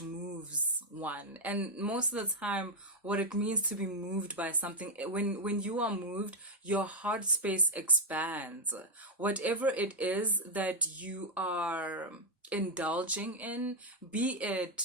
one, and most of the time what it means to be moved by something, when you are moved, your heart space expands. Whatever it is that you are indulging in, be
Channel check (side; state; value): both; normal; correlation 0.02